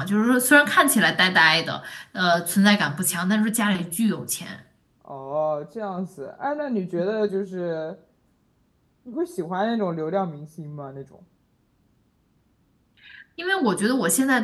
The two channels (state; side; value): identical; both; correlation 1.00